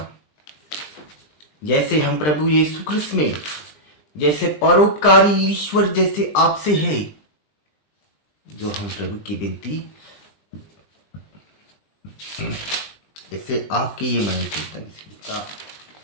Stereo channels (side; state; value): right; late; 20 ms